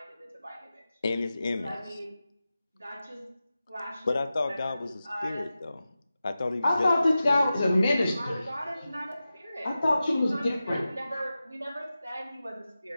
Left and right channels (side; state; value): both; inverted; correlation -0.94